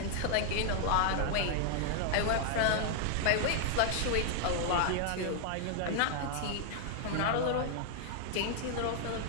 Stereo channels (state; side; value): different; both; correlation 0.00